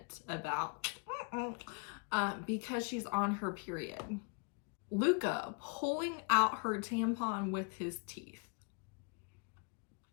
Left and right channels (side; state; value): right; quieter; 36.2 dB